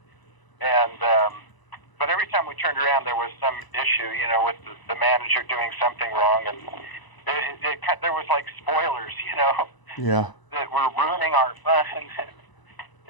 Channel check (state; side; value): late; right; 1.0 ms